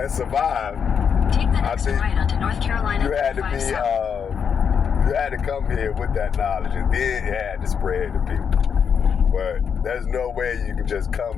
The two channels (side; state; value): right; quieter; 7.0 dB